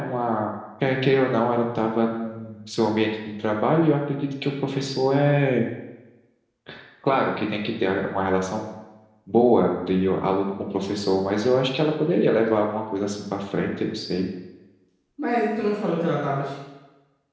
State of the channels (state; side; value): identical; both; correlation 1.00